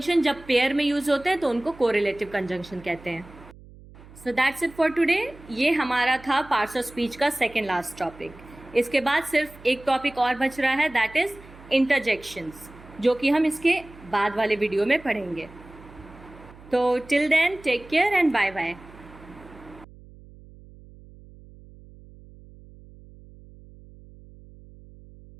जब पेयर में यूज होते हैं तो उनको कोरिलेटिव कंजंक्शन कहते हैं। So that's it for today. ये हमारा था पार्ट्स ऑफ स्पीच का सेकेंड लास्ट टॉपिक। इसके बाद सिर्फ एक टॉपिक और बच रहा है, दैट इज इंटरजेक्शंस, जो कि हम इसके बाद वाले वीडियो में पढ़ेंगे। तो till then take care and bye bye.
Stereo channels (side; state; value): right; noise; hum, 21 dB below the sound